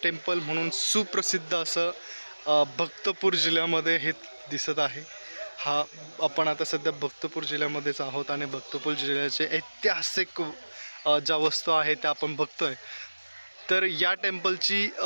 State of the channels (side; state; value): both; inverted; correlation -1.00